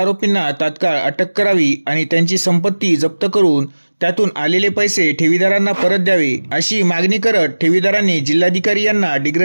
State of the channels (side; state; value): both; inverted; correlation -1.00